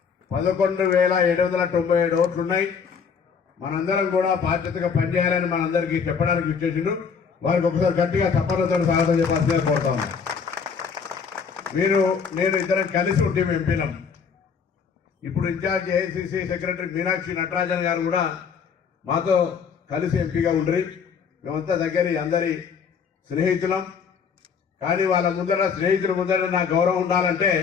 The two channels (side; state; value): right; quieter; 6.3 dB